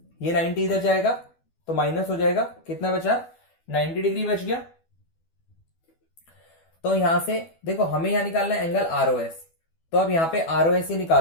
ये 90 इधर जाएगा तो माइनस हो जाएगा, कितना बचा, 90 डिग्री बच गया। तो यहां से देखो हमें यहां निकालना है एंगल आरओएस, तो अब यहां पे आरओएस ही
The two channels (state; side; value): late; right; 12 ms